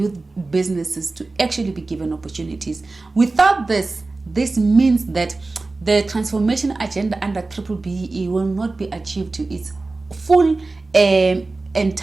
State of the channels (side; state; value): left; quieter; 3.4 dB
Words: businesses to actually be given opportunities. Without this means that the transformation agenda under BBBE will not be achieved to its full